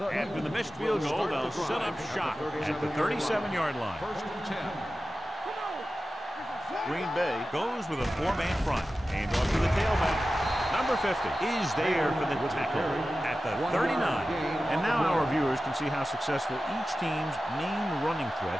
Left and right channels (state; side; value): normal; both; correlation 0.94